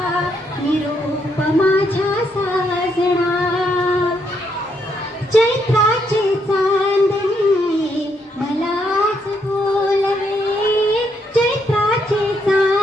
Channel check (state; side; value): normal; both; correlation 0.76